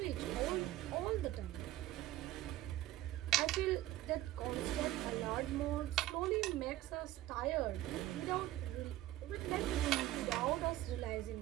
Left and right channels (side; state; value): left; quieter; 14.9 dB